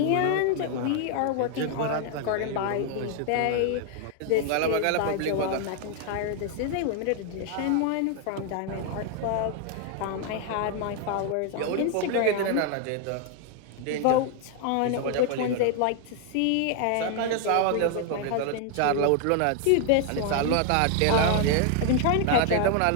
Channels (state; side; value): different; both; correlation 0.00